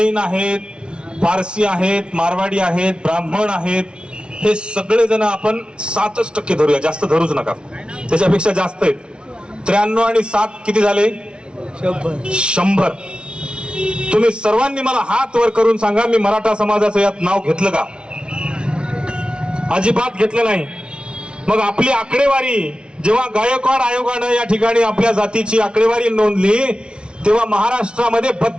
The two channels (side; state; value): left; late; 0.057 ms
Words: आहेत, पारसी आहेत, मारवाडी आहेत, ब्राह्मण आहेत. हे सगळे जण आपण 7% धरूया, जास्त धरूच नका, त्याच्यापेक्षा जास्त आहेत. 93 आणि 7 किती झाले? 100. तुम्ही सर्वांनी मला हात वर करून सांगा, मी मराठा समाजाचं यात नाव घेतलं का? अजिबात घेतलं नाही. मग आपली आकडेवारी जेव्हा गायकवाड आयोगानं या ठिकाणी आपल्या जातीची आकडेवारी नोंदली तेव्हा महाराष्ट्रामध्ये